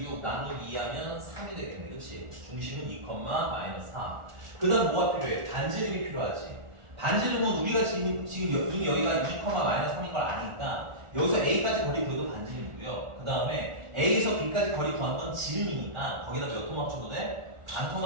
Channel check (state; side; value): late; left; 1.4 ms